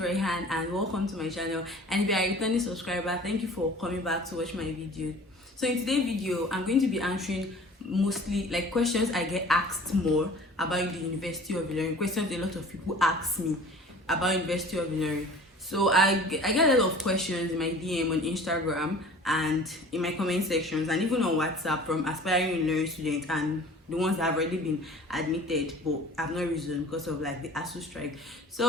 and welcome to my channel. And if you are a returning subscriber, thank you for coming back to watch my video. So in today's video, I'm going to be answering mostly like questions I get asked more about the University of Ilorin. Questions a lot of people ask me about University of Ilorin. So I get a lot of questions in my DM on Instagram and in my comment sections and even on WhatsApp from aspiring Ilorin students and the ones that have already been admitted but have not risen because of like the ASU strike.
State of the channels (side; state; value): both; normal; correlation 0.45